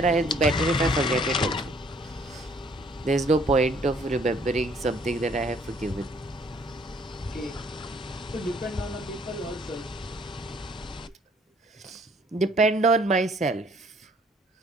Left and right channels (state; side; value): normal; both; correlation 0.61